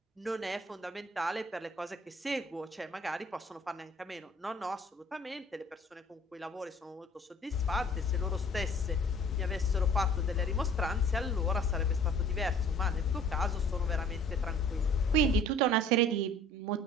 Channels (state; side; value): normal; both; correlation 0.51